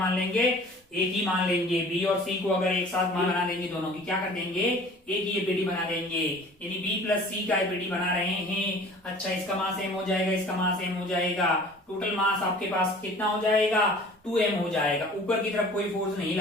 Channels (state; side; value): normal; both; correlation 0.47